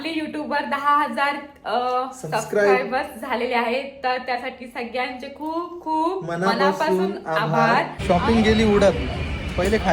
युट्यूबवर 10,000 सबस्क्रायबर्स झालेले आहेत. तर त्यासाठी सगळ्यांचे खूप खूप मनापासून आभार. शॉपिंग गेली उडत, पहिले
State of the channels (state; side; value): identical; both; correlation 1.00